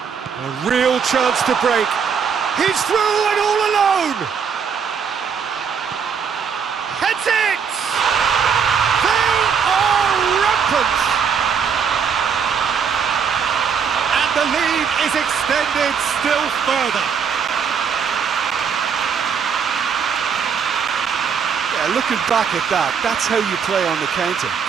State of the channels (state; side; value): quieter; left; 6.7 dB